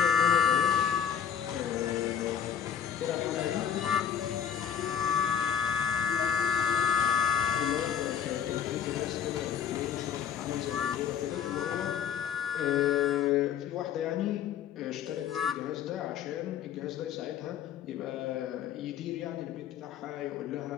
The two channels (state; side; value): quieter; right; 8.8 dB